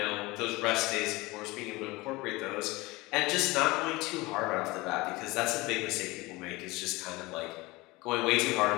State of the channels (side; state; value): right; quieter; 22.1 dB